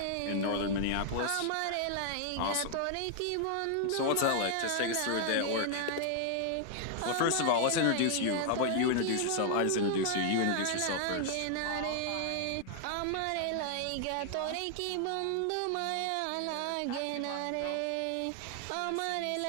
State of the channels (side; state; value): both; different; correlation 0.00